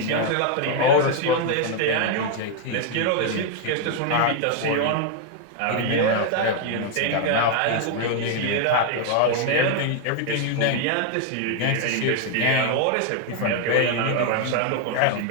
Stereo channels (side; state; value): both; different; correlation 0.01